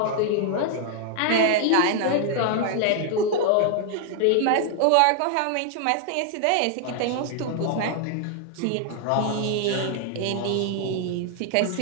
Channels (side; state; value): both; different; correlation 0.00